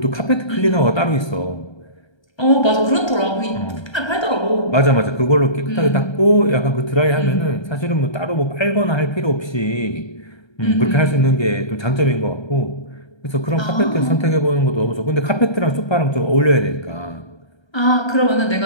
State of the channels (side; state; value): right; late; 1.3 ms